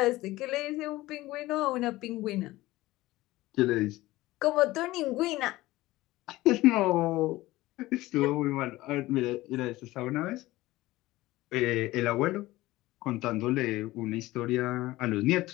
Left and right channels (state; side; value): quieter; right; 18.0 dB